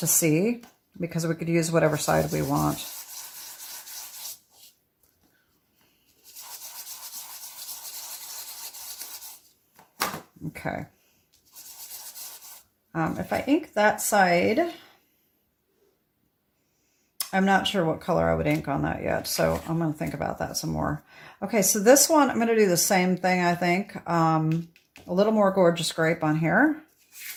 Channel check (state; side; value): identical; both; correlation 1.00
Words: see, because we could use whatever side we want. Okay. If I ink that side, I'm not sure what color I would ink on that yet, so I'm going to think about that some more. Okay, so this one, I'm going to do the same thing, I think. A little more Gorgeous Grape on here.